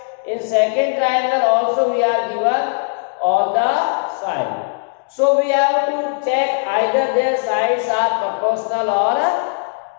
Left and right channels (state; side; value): silent; right; digital silence